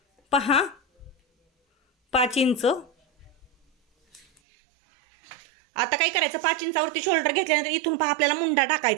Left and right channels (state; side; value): drops out; left; at 4.2 s